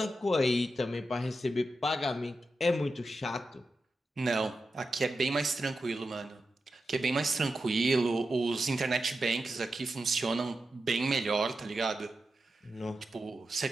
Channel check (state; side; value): normal; both; correlation 0.90